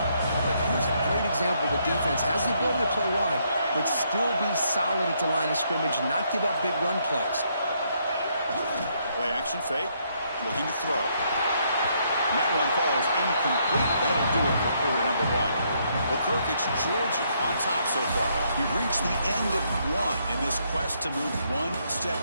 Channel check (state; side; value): inverted; both; correlation -0.73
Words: But here's a great example. The defense has the ability to play wide, but still be solid at the line of scrimmage and not give up big run plays. Play action fake. Looking to throw. And that one falls incomplete. That'll do it for quarter number 1. Well, Kirk, it's Georgia on top so far. You've reached the end of one in this quest to move one step